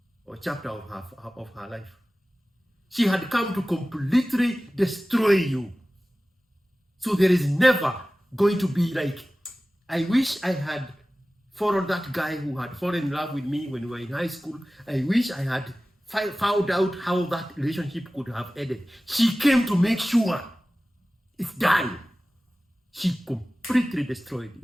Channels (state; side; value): normal; both; correlation 0.97